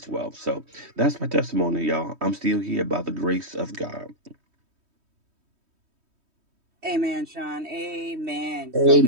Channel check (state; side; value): late; left; 3.2 ms